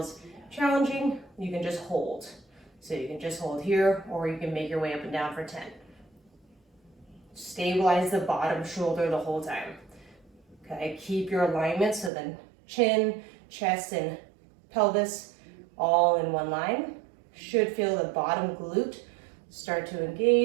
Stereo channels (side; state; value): left; drops out; at 12.1 s